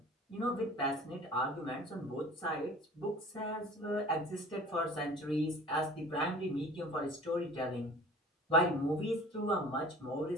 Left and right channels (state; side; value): normal; both; correlation 0.44